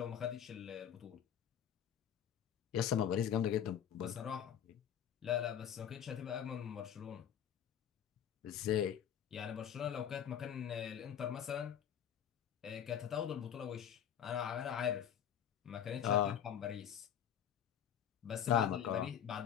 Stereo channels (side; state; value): right; quieter; 9.2 dB